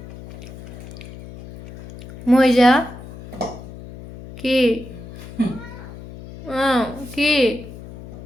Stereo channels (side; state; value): left; noise; hum, 15 dB below the sound